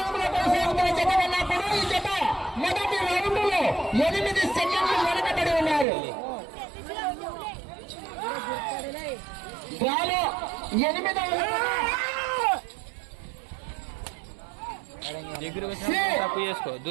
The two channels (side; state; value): left; drops out; at 5.9 s